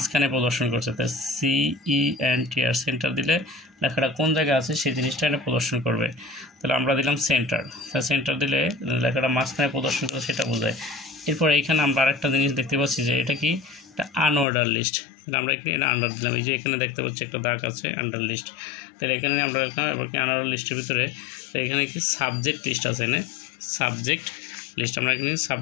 প্রদর্শন করছে। তো CENTR সেন্টার দিলে লেখাটা কোন জায়গায় আছে সেই জিনিসটা এটা প্রদর্শন করবে। তাহলে আমরা দিলাম সেন্টার, সেন্টার দিলে লেখাটা মাঝখানে প্রদর্শন করে সেটা বোঝায়। এরপর এইখানে আমরা আরেকটা জিনিস দেখতে পাচ্ছি যে এটা কি, একটা আনঅর্ডার লিস্ট। তাহলে আমরা এখানে এটা আন্ডার দিলাম, এই যে এখানে দেখতে পাচ্ছি একটা দাগ আছে আন্ডার লিস্ট। তাহলে এখানে আমরা লিখলাম, এবার কি আনঅর্ডার লিস্টের ভিতরে তো এখানে কি সাবজেক্ট লিস্ট আছে, এখানে সাবজেক্ট লিস্ট, আমরা এখানে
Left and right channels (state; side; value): drops out; right; at 14.5 s